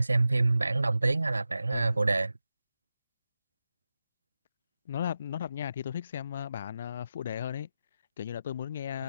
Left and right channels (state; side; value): inverted; both; correlation -0.91